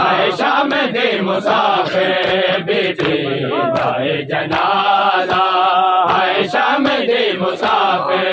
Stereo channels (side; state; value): both; identical; correlation 1.00